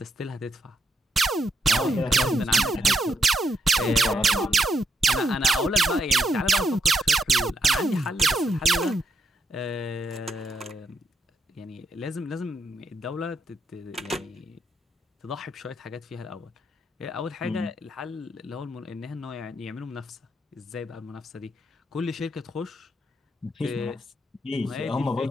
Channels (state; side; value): normal; both; correlation 0.80